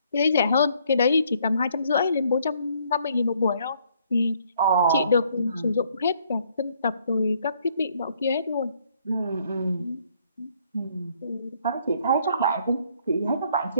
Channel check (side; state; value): both; inverted; correlation -0.66